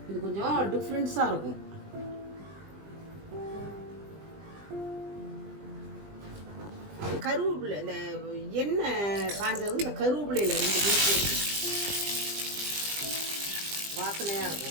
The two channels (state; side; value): late; left; 20 ms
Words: இது கொஞ்சம் டிஃப்ரென்ஸாக இருக்கும். கருவேப்பிலை, இந்த எண்ணெய் காஞ்சதும் இந்த கருவேப்பிலையில் 2 பீஸ் வாசனையாக